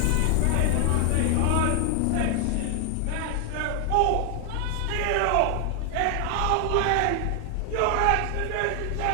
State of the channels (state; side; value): different; both; correlation 0.00